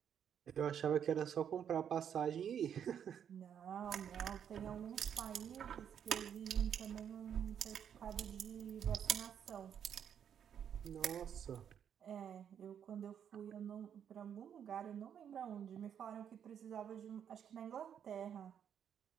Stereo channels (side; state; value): left; quieter; 8.6 dB